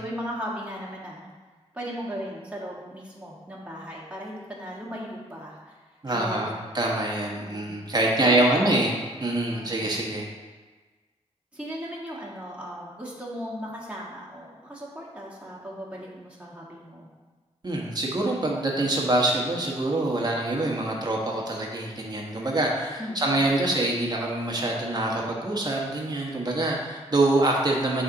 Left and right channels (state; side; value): normal; both; correlation 0.56